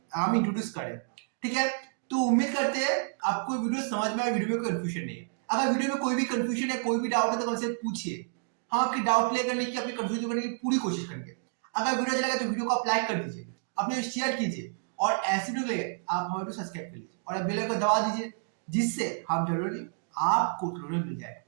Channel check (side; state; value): left; silent; digital silence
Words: हम इंट्रोड्यूस करें, ठीक है। तो उम्मीद करते हैं आपको वीडियो समझ में आए, वीडियो में कंफ्यूजन नहीं है। अगर वीडियो में कोई भी कंफ्यूजन है, कोई भी डाउट है तो हमसे पूछिए, हम आपकी डाउट क्लियर करने की, अपनी कंफ्यूजन करने की पूरी कोशिश करेंगे। अगर वीडियो अच्छा लगा तो वीडियो को आप लाइक कर दीजिए, अपने शेयर कीजिए, और ऐसे वीडियो के लिए आप हमारे को सब्सक्राइब कर लीजिए और बेल आइकन दबा दीजिए, जिससे हम जरूरी आपको मिल जाए।